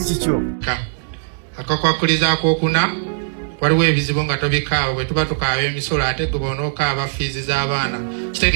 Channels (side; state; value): left; silent; 65 dB below the other